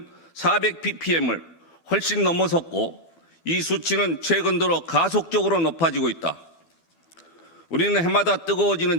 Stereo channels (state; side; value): late; right; 12 ms